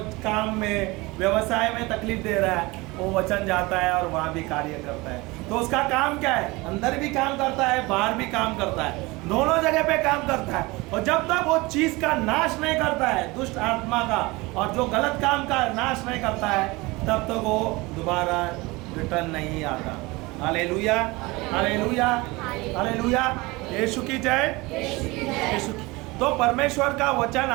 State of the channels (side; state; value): left; quieter; 23.0 dB